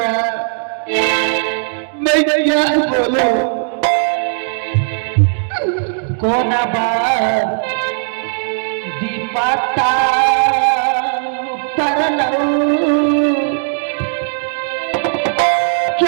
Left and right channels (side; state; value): left; silent; digital silence